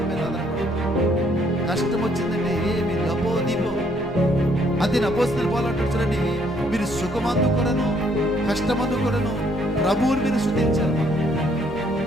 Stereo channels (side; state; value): both; normal; correlation 0.67